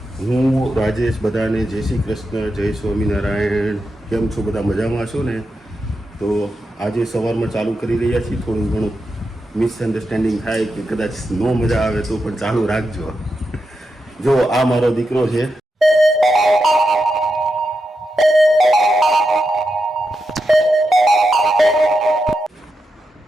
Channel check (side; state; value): both; normal; correlation 0.87